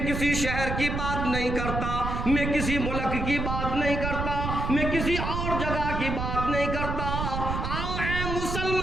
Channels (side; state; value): right; noise; rumble, 3 dB below the sound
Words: किसी शहर की बात नहीं करता, मैं किसी मुल्क की बात नहीं करता, मैं किसी और जगह की बात नहीं करता। आओ ऐ